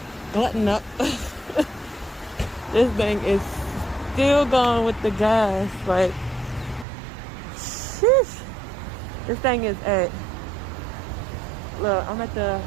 glutton up. This thing is still going with the gas. Like, sheesh. This thing is at, look, I'm at the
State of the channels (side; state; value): left; drops out; at 6.9 s